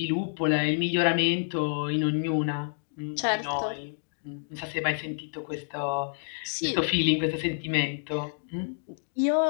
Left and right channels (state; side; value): silent; right; digital silence